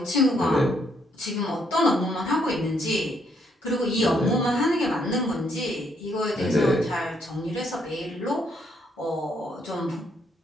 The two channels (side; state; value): both; normal; correlation 0.72